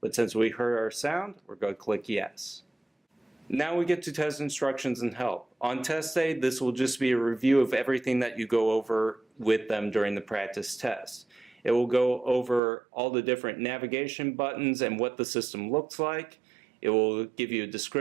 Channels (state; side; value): drops out; left; at 12.6 s